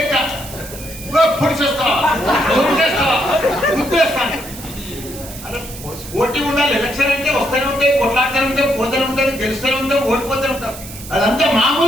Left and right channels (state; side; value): noise; right; hiss, 14 dB below the sound